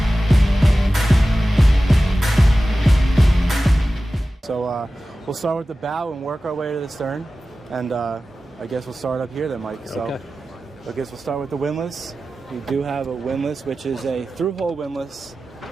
So we'll start with the bow and work our way to the stern, and I guess we'll start up here then, Mike. So okay. I guess we'll start with the windlass. We do have a windlass, which is a through-hole windlass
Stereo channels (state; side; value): normal; both; correlation 0.95